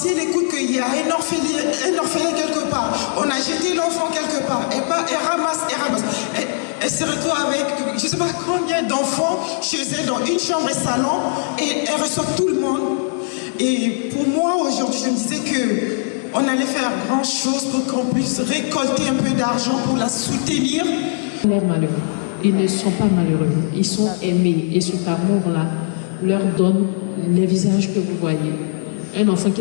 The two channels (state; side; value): silent; right; digital silence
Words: elle écoute qu'il y a un orphelin quelque part, on a jeté l'enfant quelque part, elle ramasse. Elle se retrouve avec je ne sais pas combien d'enfants chez elle dans une chambre et salon, et elle reçoit tout le monde. Et pour moi, aujourd'hui, je me disais qu'on allait faire grand chose pour qu'on puisse récolter un peu d'argent pour la soutenir. Ils sont malheureux. Ils ne sont pas malheureux. Ils sont aimés. Et cet amour-là leur donne les visages que vous voyez. Un enfant